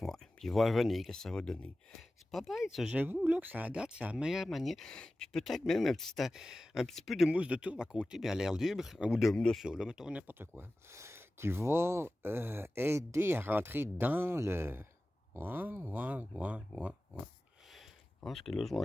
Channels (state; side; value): normal; both; correlation 0.96